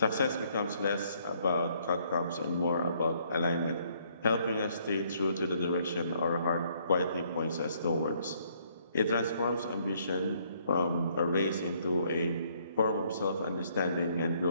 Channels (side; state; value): both; inverted; correlation -0.67